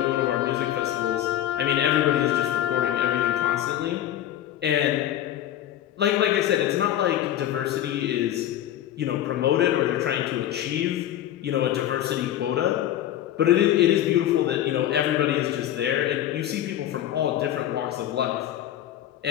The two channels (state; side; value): quieter; right; 12.0 dB